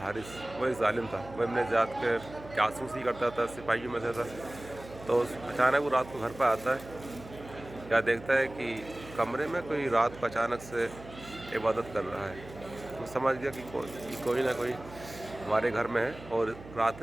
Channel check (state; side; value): noise; right; hum, 17 dB below the sound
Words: حارث، وہ ایک ظالم تھا، وہ ابن زیاد کے جاسوسی کرتا تھا، سپاہیوں میں سے تھا. تو اچانک وہ رات کو گھر پہ آتا ہے، کیا دیکھتا ہے کہ کمرے میں کوئی رات کو اچانک سے عبادت کر رہا ہے. وہ سمجھ گیا کہ کوئی نہ کوئی ہمارے گھر میں ہے اور رات